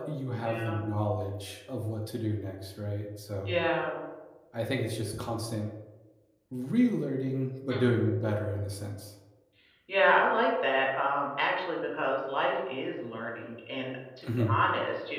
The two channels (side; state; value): both; identical; correlation 1.00